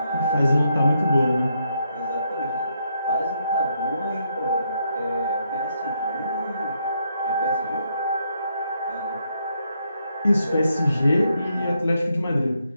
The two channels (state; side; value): inverted; both; correlation -0.77